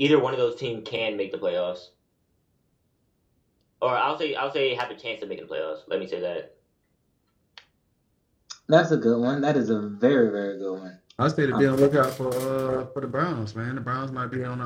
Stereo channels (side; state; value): both; identical; correlation 1.00